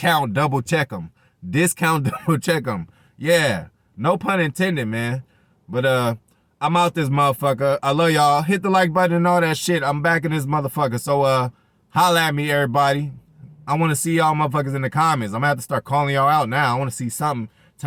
double check them. Discount double check them. Yeah. No pun intended, man. But, I'm out this motherfucker. I love y'all. Hit the like button and all that shit. I'm back in this motherfucker. So, holla at me, everybody. I want to see y'all motherfuckers in the comments. I'm going to have to start calling y'all out now. I want to see something.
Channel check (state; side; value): identical; both; correlation 1.00